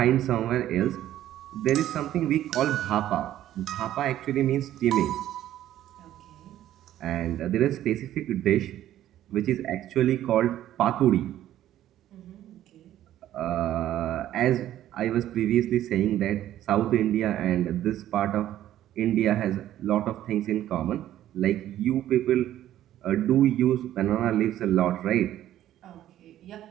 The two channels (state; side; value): quieter; left; 12.6 dB